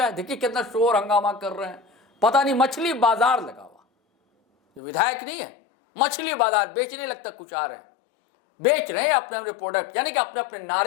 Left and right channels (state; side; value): drops out; right; at 4.8 s